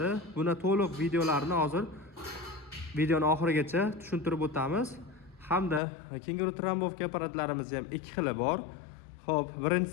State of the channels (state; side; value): drops out; right; at 5.8 s